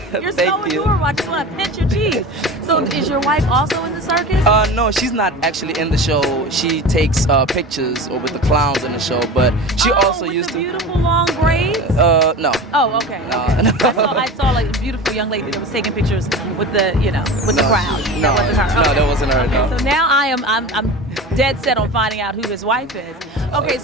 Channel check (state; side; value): normal; both; correlation 0.32